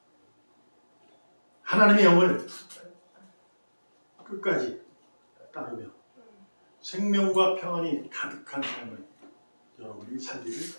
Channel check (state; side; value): inverted; both; correlation -1.00